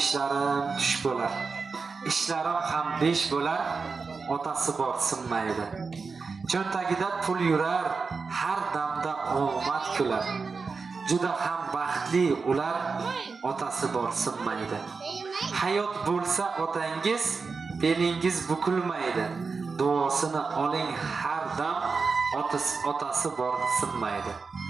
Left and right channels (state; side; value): quieter; left; 4.7 dB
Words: tush bo'lar. Ishlarim ham besh bo'lar, otasi bor sinmaydi. Cho'ntagida pul yurar, har damda omad kular. Juda ham baxtli ular, otasi bor sinmaydi. Hayot bo'lsa otangiz, belingiz bukilmaydi. Duosini oling har dam, otasi bor sinmaydi.